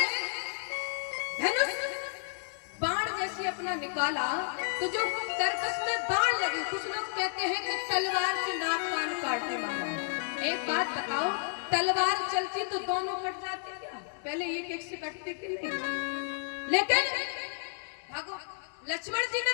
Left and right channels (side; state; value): right; silent; digital silence